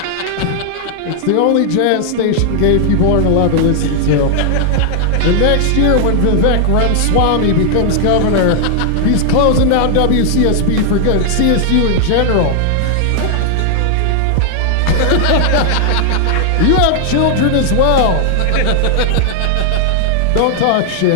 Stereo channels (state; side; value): different; both; correlation 0.00